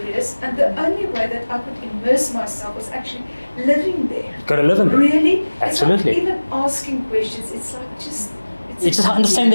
and the only way that I could immerse myself was actually living there. Got to live in there. Really? Absolutely. It's not even asking questions. It's like just. You just understand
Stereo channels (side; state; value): both; inverted; correlation -1.00